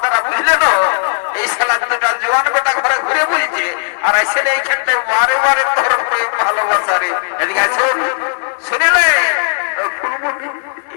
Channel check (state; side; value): silent; right; digital silence